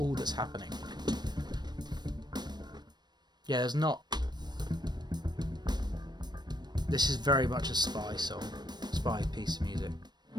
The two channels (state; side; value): late; left; 0.21 ms